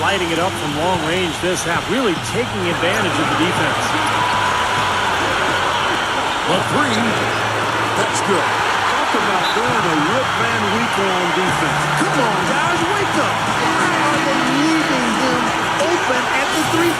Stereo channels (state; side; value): identical; both; correlation 1.00